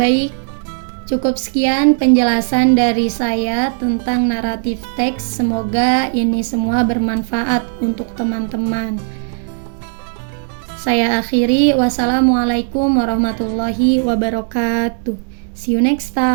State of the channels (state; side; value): silent; left; digital silence